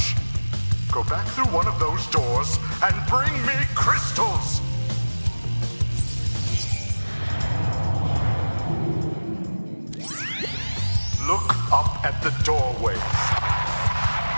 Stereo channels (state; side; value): inverted; both; correlation -1.00